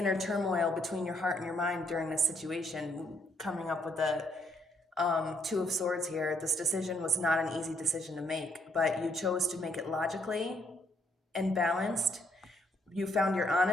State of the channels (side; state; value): both; normal; correlation 0.70